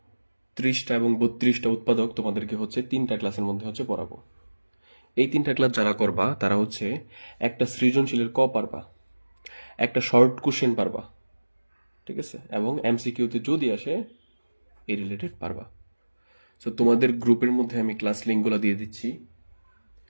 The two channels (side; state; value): both; inverted; correlation -1.00